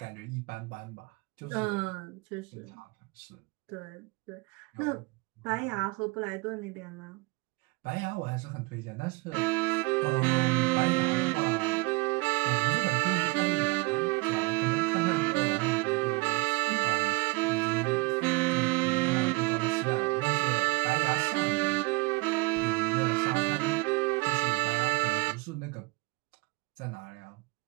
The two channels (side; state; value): left; quieter; 25.6 dB